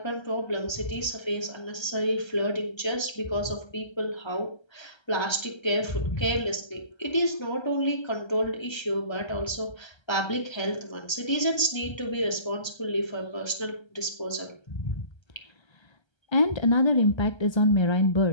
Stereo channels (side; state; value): right; late; 1.3 ms